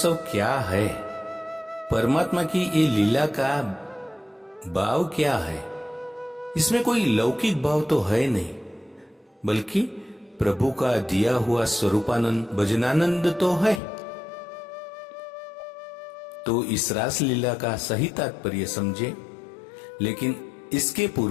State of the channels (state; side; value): drops out; right; at 13.8 s